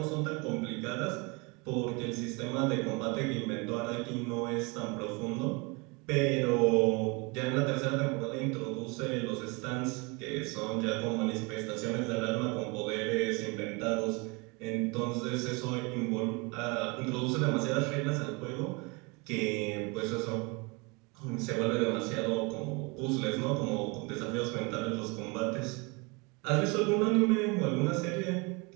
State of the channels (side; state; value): left; quieter; 28.6 dB